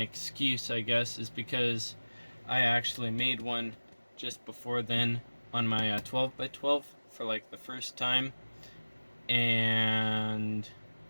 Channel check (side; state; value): both; inverted; correlation -1.00